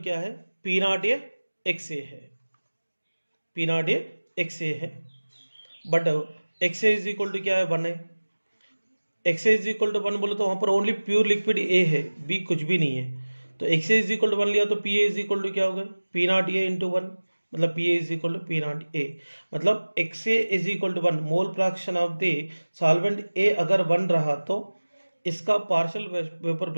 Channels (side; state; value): both; inverted; correlation -1.00